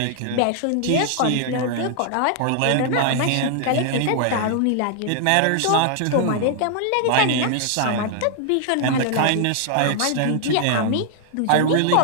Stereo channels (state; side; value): different; both; correlation 0.00